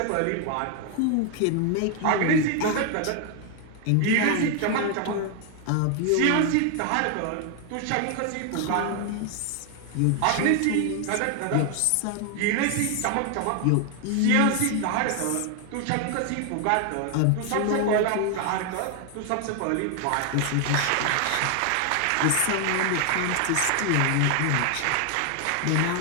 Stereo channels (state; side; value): different; both; correlation 0.00